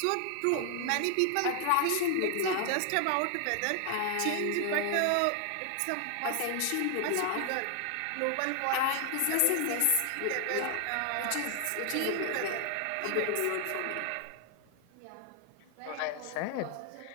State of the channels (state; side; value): different; both; correlation 0.00